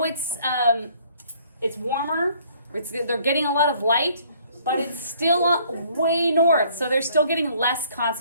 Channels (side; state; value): both; inverted; correlation -0.60